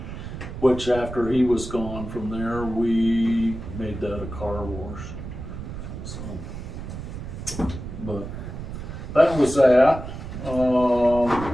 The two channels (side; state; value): right; noise; rumble, 9 dB below the sound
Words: which after he was gone from there, we made that a car wash. So, but that was that.